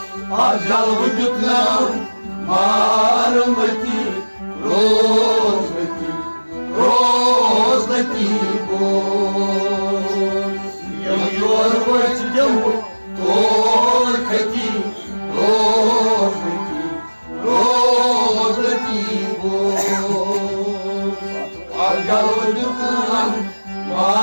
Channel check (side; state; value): both; inverted; correlation -1.00